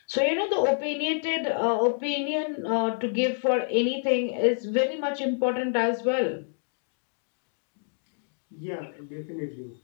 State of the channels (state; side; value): silent; right; digital silence